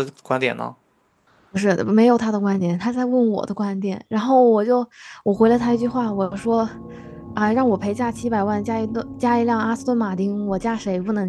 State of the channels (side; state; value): both; identical; correlation 1.00